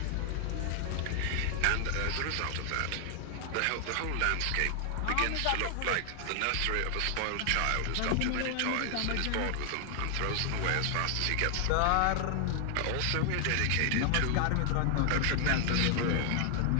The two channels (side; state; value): both; different; correlation 0.00